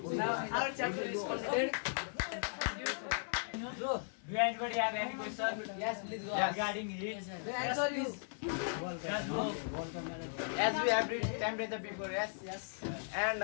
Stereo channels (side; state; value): right; silent; 53 dB below the other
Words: Now our chapter is completed. So, do anybody have any question? Yes, please go. Regarding heat? Answer is Just go. As we have read temperature before, yes? yes. And